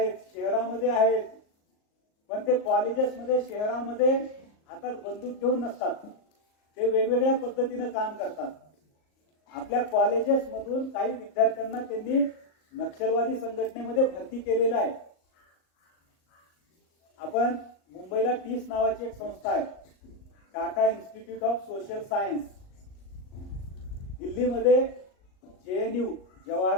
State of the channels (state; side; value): late; right; 38 ms